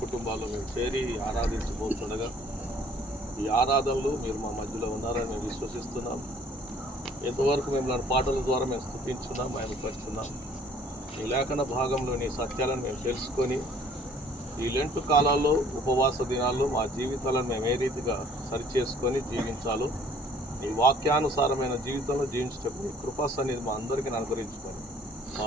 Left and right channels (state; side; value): normal; both; correlation 0.56